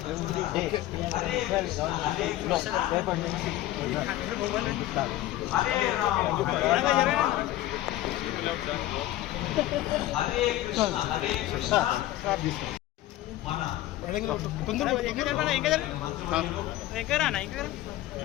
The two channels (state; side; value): quieter; right; 15.1 dB